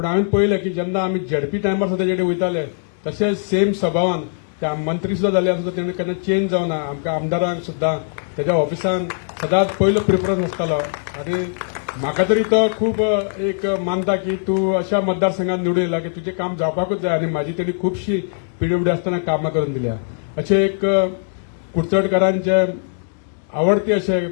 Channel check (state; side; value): silent; right; digital silence